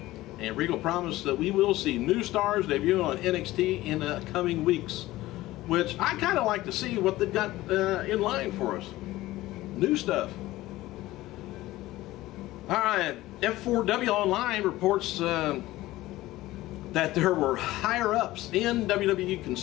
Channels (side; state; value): right; quieter; 17.1 dB